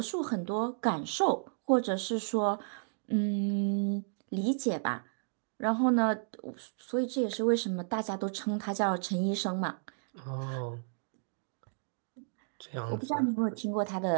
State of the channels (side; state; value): left; silent; digital silence